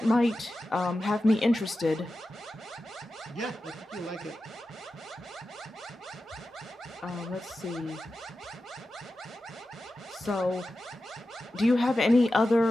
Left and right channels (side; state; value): both; normal; correlation 0.92